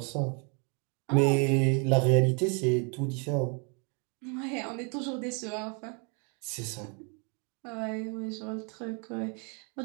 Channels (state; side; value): quieter; left; 36.1 dB